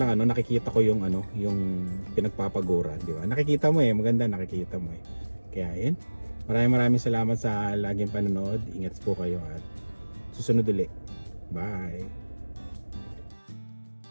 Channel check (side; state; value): both; inverted; correlation -1.00